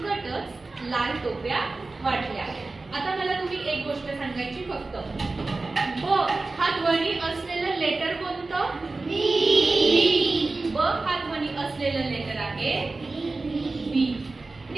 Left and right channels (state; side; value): quieter; left; 3.5 dB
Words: लाल टोप्या वाटल्या। आता मला तुम्ही एक गोष्ट सांगायची फक्त, ब हा ध्वनी असलेलं लेटर कोणतं? बी। ब हा ध्वनी असलेलं लेटर आहे बी।